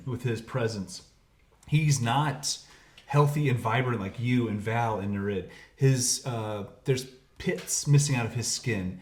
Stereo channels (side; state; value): both; identical; correlation 1.00